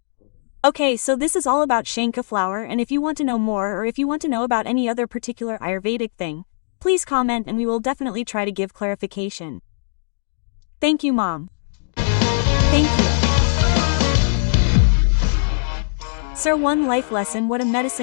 Okay, so this is all about Shankhu flower, and if you want to know more or if you want to know about any other particular Ayurvedic thing, please comment and we will definitely try to give clarification. Thank you, Mom. Thank you. Sir, one life lesson: what a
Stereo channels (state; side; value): silent; right; digital silence